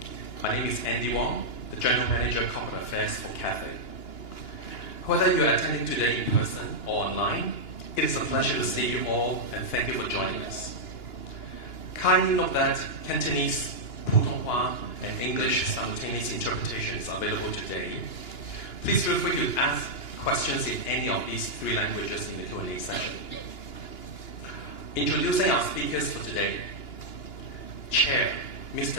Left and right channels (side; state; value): right; late; 2.9 ms